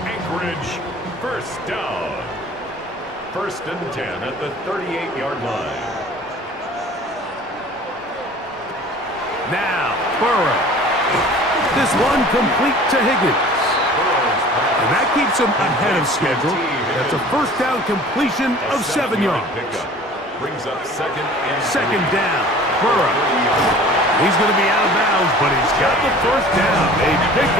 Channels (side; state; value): both; normal; correlation 0.46